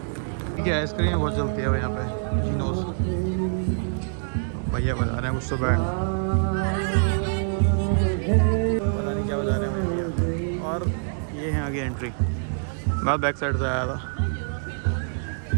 क्या आइसक्रीम बहुत चलती है यहाँ पे, जीनोस। भैया बजा रहे हैं कुछ तो बैंड, पता नहीं क्या बजा रहे हैं भैया। और ये है आगे एंट्री, मैं बैक साइड से आया था।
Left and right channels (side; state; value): left; silent; digital silence